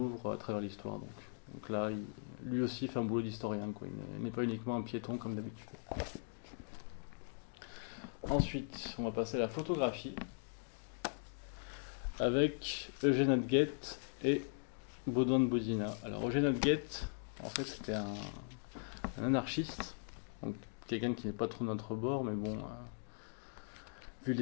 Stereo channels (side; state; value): right; silent; digital silence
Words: à travers l'histoire. Donc là, lui aussi fait un boulot d'historien, quoi. Il n'est pas uniquement un piéton comme d'habitude. Ensuite, on va passer à la photographie avec Eugène Hadguet et Baudouin de Bodina. Alors Eugène Hadguet, en fait, c'était un anarchiste, donc quelqu'un qui n'est pas trop de notre bord, mais bon, vu